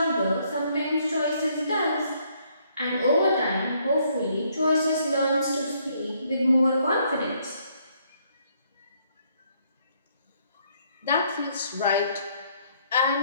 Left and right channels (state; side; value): inverted; both; correlation -0.69